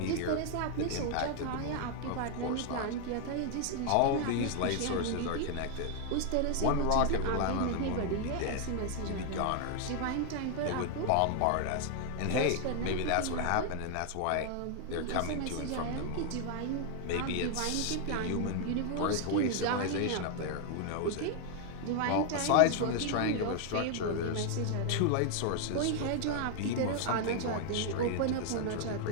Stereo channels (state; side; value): different; both; correlation 0.00